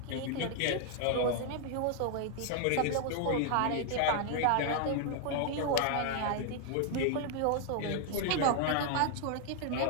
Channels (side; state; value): both; different; correlation 0.00